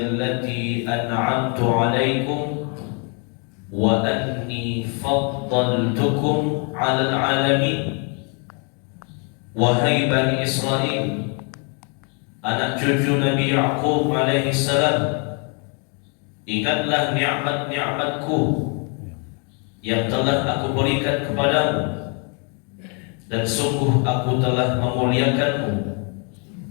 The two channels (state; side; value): quieter; right; 37.3 dB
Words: an'amtu alaikum wa anni faddaltukum 'alal 'alamin. Wahai Bani Israel, anak cucu Nabi Ya'qub alaihi salam, ingatlah nikmat-nikmatku yang telah aku berikan kepadamu, dan sungguh aku telah memuliakanmu